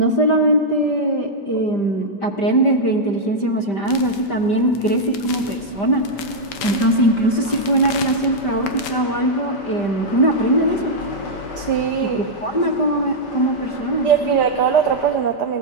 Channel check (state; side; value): late; right; 5.3 ms